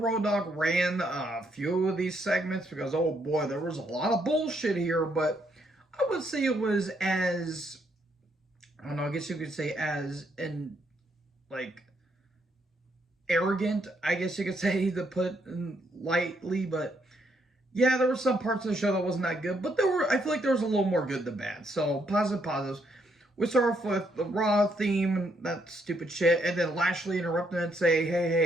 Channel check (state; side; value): normal; both; correlation 0.74